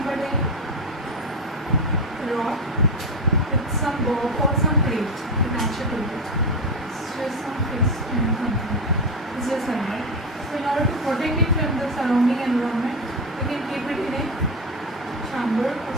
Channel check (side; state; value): both; normal; correlation 0.15